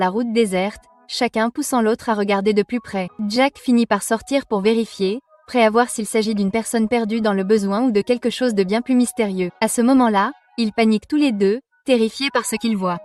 route déserte, chacun poussant l'autre à regarder de plus près. Jack finit par sortir pour vérifier, prêt à voir s'il s'agit d'une personne perdue dans le besoin ou de quelque chose de bien plus mystérieux. À ce moment-là, ils paniquent tous les deux, terrifiés par ce qu'ils voient.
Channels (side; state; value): both; identical; correlation 1.00